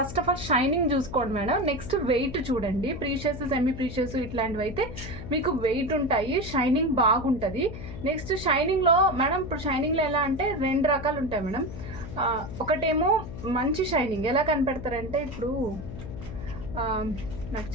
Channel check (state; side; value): noise; left; hum, 10 dB below the sound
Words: ఆఫ్ ఆల్ షైనింగ్ చూసుకోండి మేడం. నెక్స్ట్ వెయిట్ చూడండి. ప్రీషియస్ సెమీ ప్రీషియస్ ఇట్లాంటివి అయితే మీకు వెయిట్ ఉంటాయి, షైనింగ్ బాగుంటుంది. నెక్స్ట్ షైనింగ్లో మేడం, ఇప్పుడు షైనింగ్లో ఎలా అంటే 2 రకాలు ఉంటాయి మేడం. ఒకటేమో మంచి షైనింగ్. ఎలా కనిపెడతారంటే, ఇప్పుడు నాకు